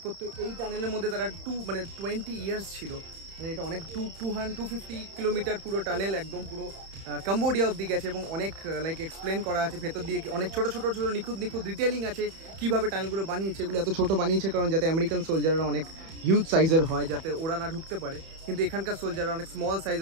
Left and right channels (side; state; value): left; late; 31 ms